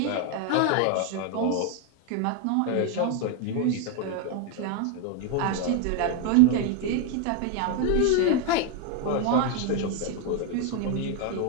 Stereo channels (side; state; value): both; different; correlation 0.01